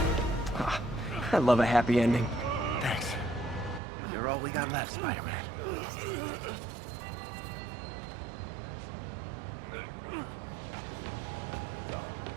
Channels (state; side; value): drops out; left; at 3.8 s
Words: Ah, I love a happy ending. Thanks. You're all we got left, Spider-Man.